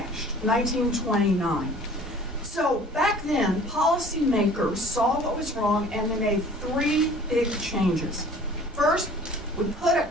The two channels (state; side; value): normal; both; correlation 0.49